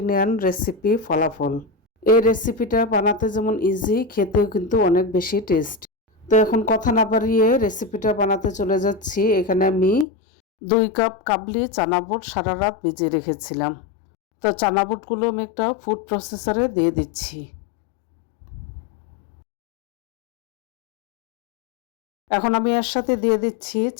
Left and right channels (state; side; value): drops out; right; at 10.1 s